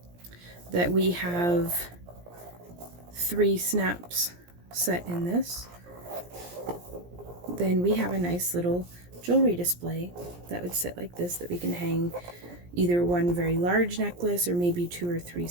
that we have 3 snaps set in this, then we have a nice little jewelry display that would sit like this, that we can hang either one very large necklace or maybe 2 or 3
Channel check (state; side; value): late; left; 17 ms